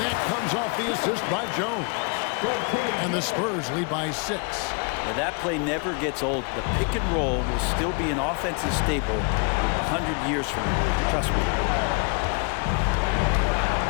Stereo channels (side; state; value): right; quieter; 35.1 dB